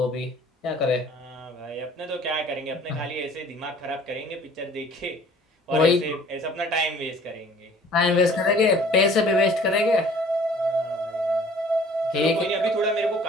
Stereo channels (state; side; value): normal; both; correlation 0.52